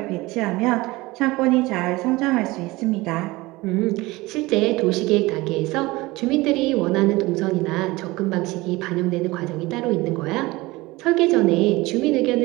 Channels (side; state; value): left; quieter; 21.0 dB